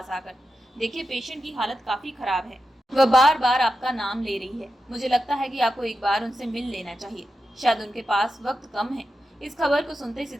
आकर, देखिए पेशेंट की हालत काफी खराब है, वह बार बार आपका नाम ले रही है, मुझे लगता है कि आपको एक बार उनसे मिल लेना चाहिए, शायद उनके पास वक्त कम है। इस खबर को सुनते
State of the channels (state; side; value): normal; both; correlation 0.89